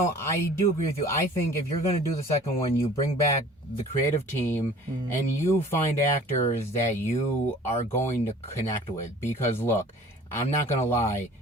I do agree with you. I think if you're going to do the second one, you bring back the creative team and you find actors that you are going to connect with. Because, look, I'm not going to lie.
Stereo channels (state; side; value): normal; both; correlation 0.48